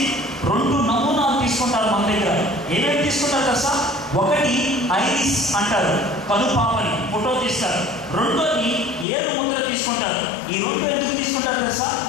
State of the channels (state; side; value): drops out; right; at 9.1 s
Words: 2 నమూనాలు తీసుకుంటారు మన దగ్గర. ఏమేమి తీసుకుంటారు తెలుసా, ఒకటి ఐరిస్ అంటారు, కనుపాపని ఫోటో తీస్తారు. రెండోది ఏడు ముద్ర తీసుకుంటారు. ఈ 2 ఎందుకు తీసుకుంటారు తెలుసా,